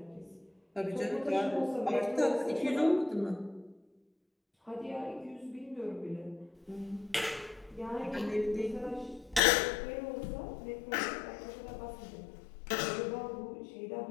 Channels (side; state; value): right; drops out; at 9.4 s